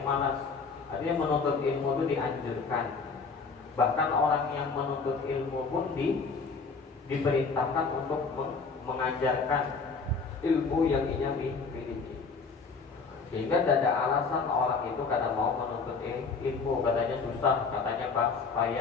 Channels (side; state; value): right; quieter; 4.8 dB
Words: malas. Artinya menuntut ilmu itu dianjurkan. Bahkan orang yang menuntut ilmu pun diperintahkan untuk mengajarkan ilmu yang ia miliki. Sehingga tidak ada alasan orang itu kadang mau menuntut ilmu, katanya susah, katanya